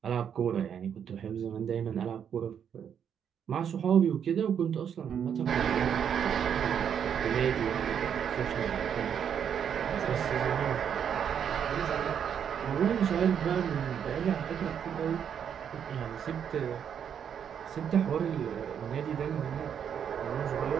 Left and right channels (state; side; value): quieter; left; 8.2 dB